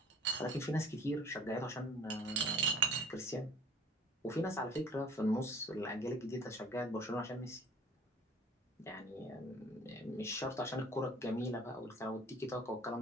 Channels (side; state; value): both; normal; correlation 0.50